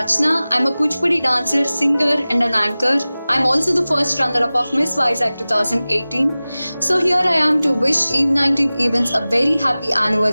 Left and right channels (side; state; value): both; inverted; correlation -0.98